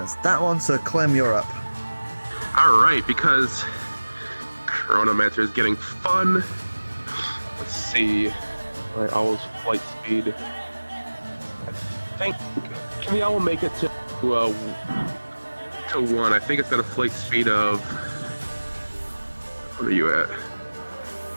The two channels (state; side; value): inverted; both; correlation -1.00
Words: that one. So Clem, you're up. Alright, because Chronomancer is getting fun. Let's see. My owl's flight speed. I think. Can the owl make it to 1? I think it's got a flight speed of. What are you at?